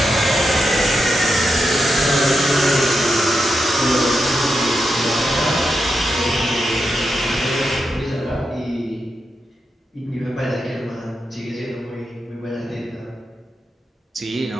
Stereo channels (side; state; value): both; normal; correlation 0.86